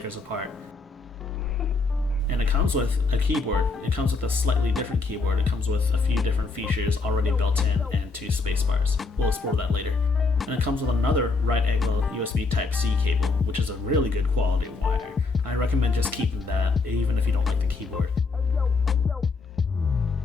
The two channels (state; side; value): quieter; right; 3.9 dB